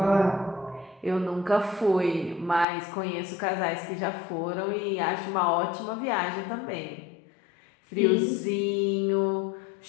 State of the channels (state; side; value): drops out; right; at 2.7 s